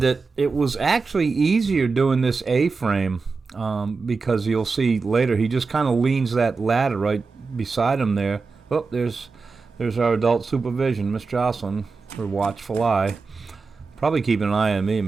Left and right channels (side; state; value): left; quieter; 4.4 dB